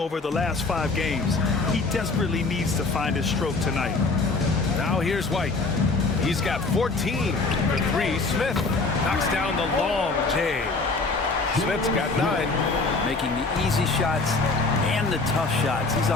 the last 5 games. He desperately needs to find his stroke tonight. Now here's White. He's got 14 for 3. Smith knocks down the long J. Smith's got 9. Making the easy shots and the tough shots. He's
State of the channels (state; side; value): quieter; right; 3.7 dB